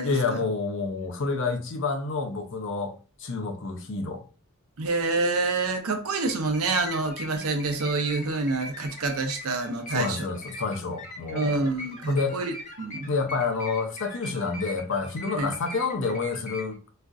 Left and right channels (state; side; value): normal; both; correlation 0.13